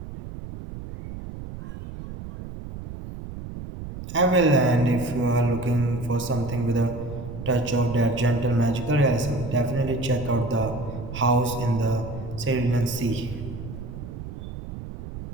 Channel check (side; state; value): right; noise; rumble, 10 dB below the sound